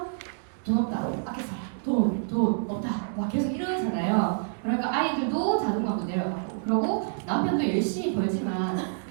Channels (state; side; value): silent; left; digital silence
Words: 돈 없다, 아껴 살아, 돈 없다, 막 계속 이러잖아요. 그러니까 아이들도 자존감도 내려가고, 그러고 남편도 열심히 벌지만